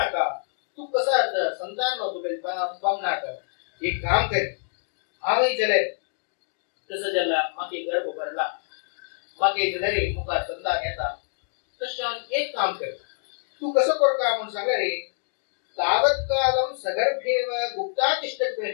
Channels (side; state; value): right; silent; digital silence